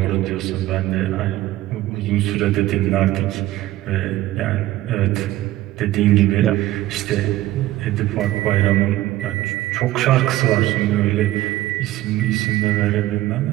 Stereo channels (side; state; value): left; quieter; 15.8 dB